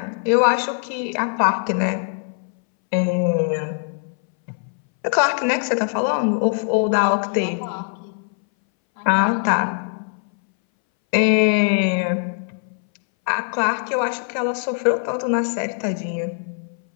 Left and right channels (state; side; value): silent; right; 62 dB below the other